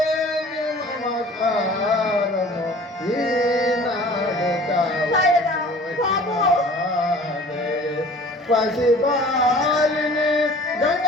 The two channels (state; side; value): normal; both; correlation 0.47